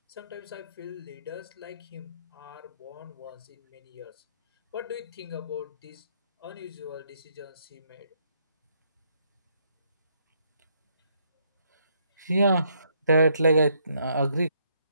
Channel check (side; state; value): both; inverted; correlation -0.72